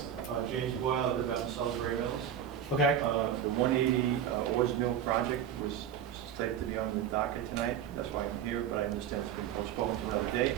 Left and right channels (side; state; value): left; quieter; 9.2 dB